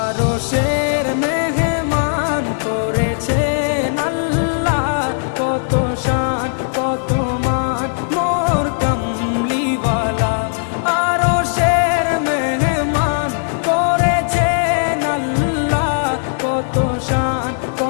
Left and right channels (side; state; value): right; silent; digital silence